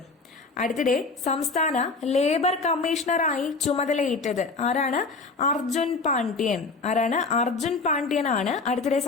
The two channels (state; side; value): quieter; right; 4.1 dB